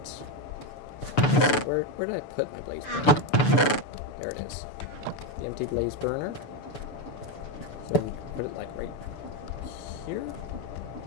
Where did I put my blaze burner? There it is. The empty blaze burner. So we put it like right here?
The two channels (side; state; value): right; late; 6.8 ms